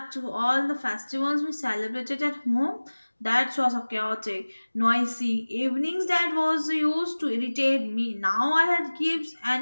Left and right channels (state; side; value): inverted; both; correlation -1.00